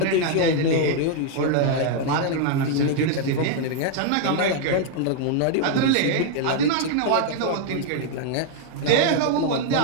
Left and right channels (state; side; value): different; both; correlation 0.00